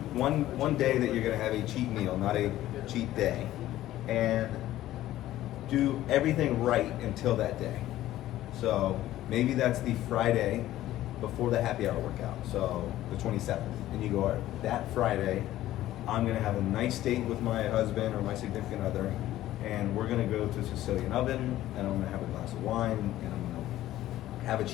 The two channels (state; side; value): quieter; right; 14.3 dB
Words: day that you're going to have a cheat meal, not a cheat day, and do everything right until that day. So maybe that's the Friday before the happy hour workout, so the 27th, and you go, all right, that Friday, I'm going to have a nice date with my husband or my significant other, and we're going to go to Sicilian Oven, and I'm going to have a glass of wine, and I'm going to have a